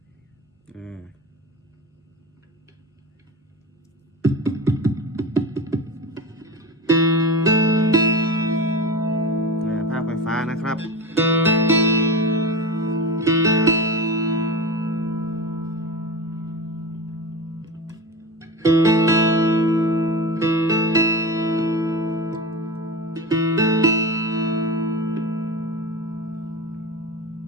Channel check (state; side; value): normal; both; correlation 0.27